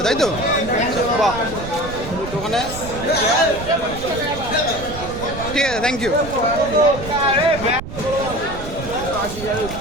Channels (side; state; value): right; noise; rumble, 10 dB below the sound